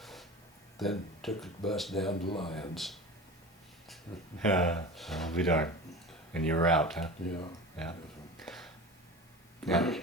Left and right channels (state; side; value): normal; both; correlation 0.33